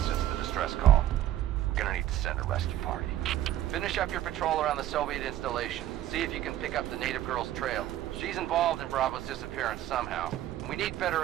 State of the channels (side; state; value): left; quieter; 13.0 dB